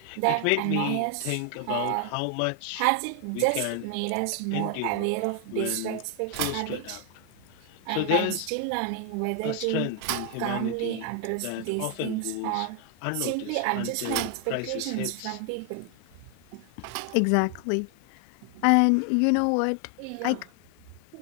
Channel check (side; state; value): both; different; correlation 0.00